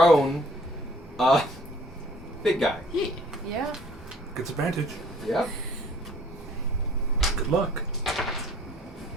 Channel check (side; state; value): both; normal; correlation 0.56